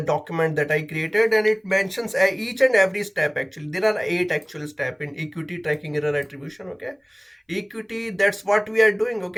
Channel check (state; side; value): identical; both; correlation 1.00